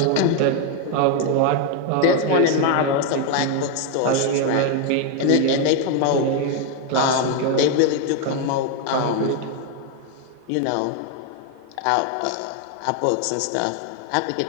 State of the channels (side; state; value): both; different; correlation 0.01